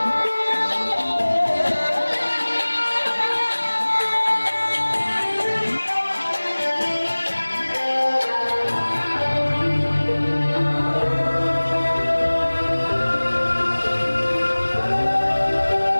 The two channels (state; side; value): inverted; both; correlation -1.00